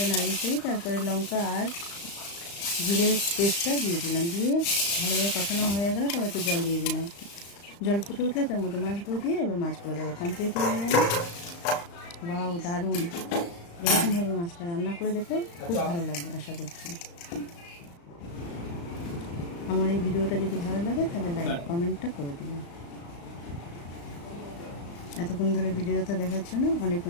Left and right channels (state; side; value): late; right; 35 ms